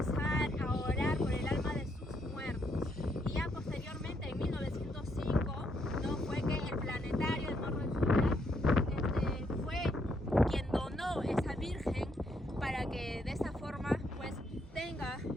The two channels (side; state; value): both; normal; correlation 0.75